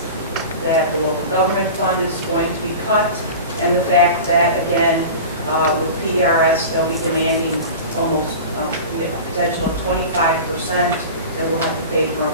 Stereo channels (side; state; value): both; inverted; correlation -0.33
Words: that the local government fund is going to be cut, and the fact that, again, with PRS, they'll be demanding almost a potential of 25% that we'll have to pay for